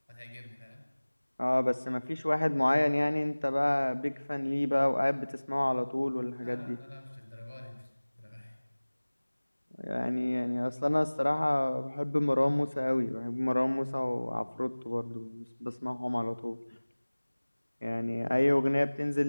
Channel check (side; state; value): both; inverted; correlation -1.00